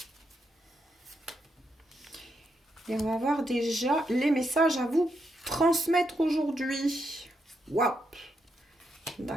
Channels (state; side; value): normal; both; correlation 0.81